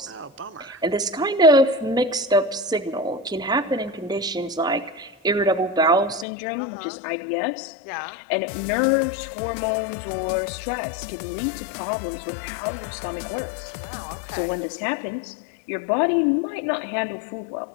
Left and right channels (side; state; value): right; drops out; at 6.2 s